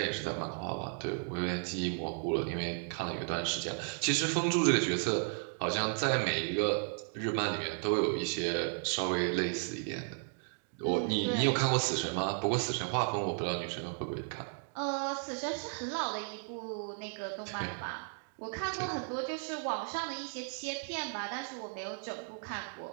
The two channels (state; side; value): silent; left; 55 dB below the other